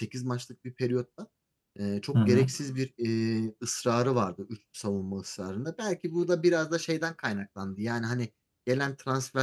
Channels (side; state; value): both; identical; correlation 1.00